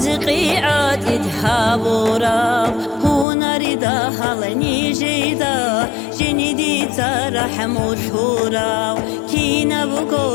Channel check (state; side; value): drops out; right; at 3.2 s